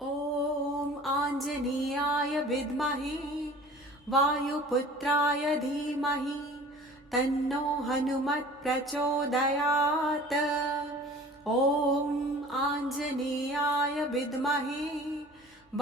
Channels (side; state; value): both; normal; correlation 0.45